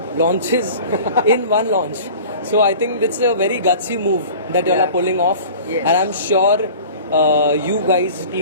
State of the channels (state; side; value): inverted; both; correlation -0.41